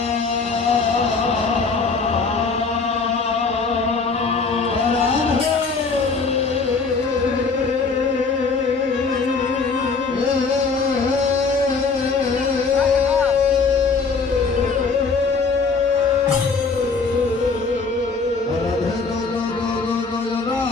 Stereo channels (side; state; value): right; quieter; 4.6 dB